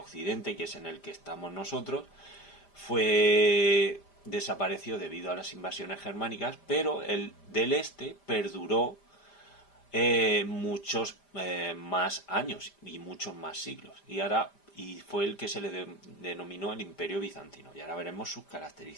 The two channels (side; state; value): right; late; 5.0 ms